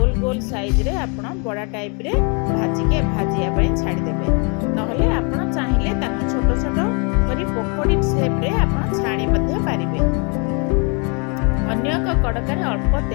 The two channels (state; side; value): quieter; right; 34.9 dB